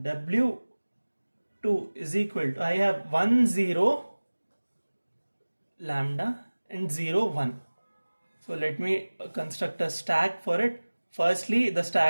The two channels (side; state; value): both; inverted; correlation -1.00